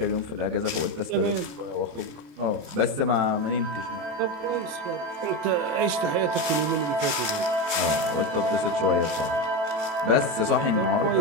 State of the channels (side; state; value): left; late; 27 ms